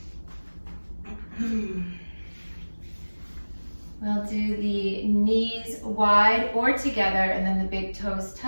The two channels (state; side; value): inverted; both; correlation -1.00